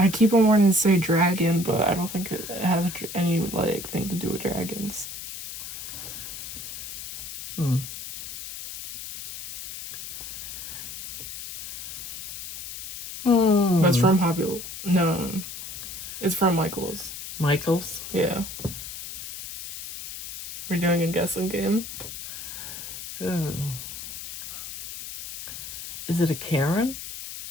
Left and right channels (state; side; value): noise; left; hiss, 9 dB below the sound